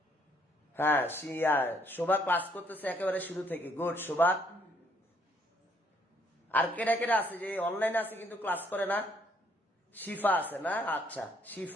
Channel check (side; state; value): both; normal; correlation 0.67